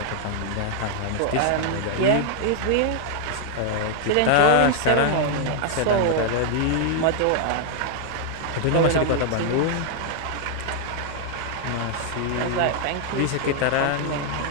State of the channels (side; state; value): both; different; correlation 0.00